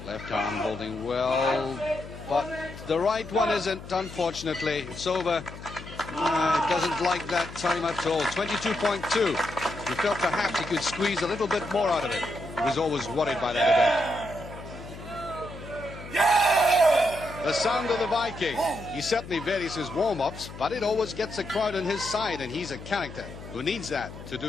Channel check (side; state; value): left; noise; hum, 13 dB below the sound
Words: Left arm holding well, but the right one isn't, unfortunately. It's over. It doesn't like that time at all. 22.2. He felt perhaps he could squeeze a little bit more out of it. He was always worried by that event. The sound of the Viking. He certainly varies his warm-ups, but it always gets the crowd on his side, and he's a character who needs that to